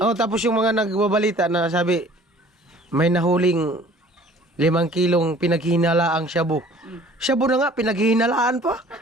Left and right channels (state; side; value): normal; both; correlation 0.51